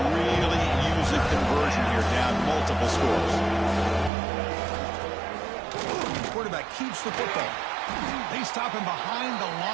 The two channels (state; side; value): drops out; left; at 4.1 s